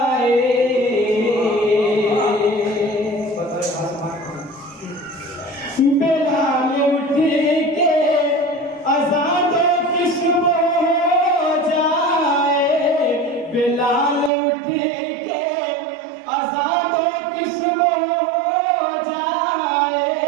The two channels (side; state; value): left; drops out; at 14.3 s